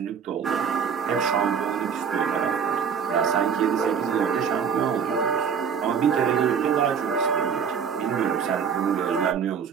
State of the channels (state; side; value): quieter; left; 6.9 dB